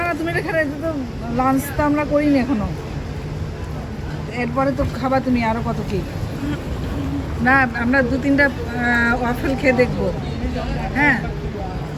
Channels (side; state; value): both; identical; correlation 1.00